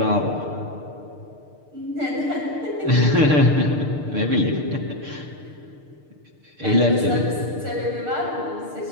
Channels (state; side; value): late; left; 6.7 ms